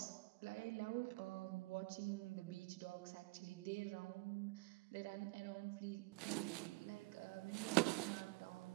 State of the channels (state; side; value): quieter; left; 24.3 dB